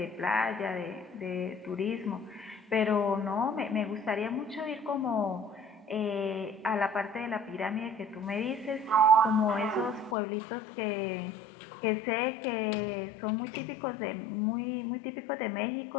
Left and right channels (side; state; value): right; drops out; at 10.2 s